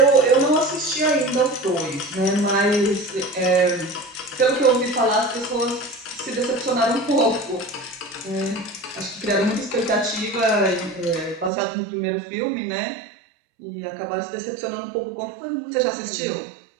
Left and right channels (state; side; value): drops out; left; at 11.5 s